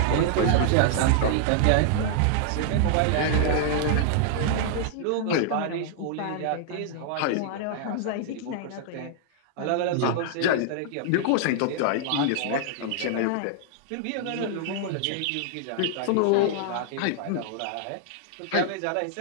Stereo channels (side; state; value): both; different; correlation -0.01